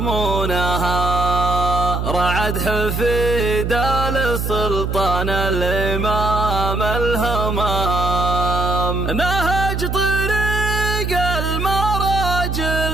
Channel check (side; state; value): right; noise; hum, 2 dB below the sound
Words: رعد حفيد للسلطان الإمام الهمام، نهج طريق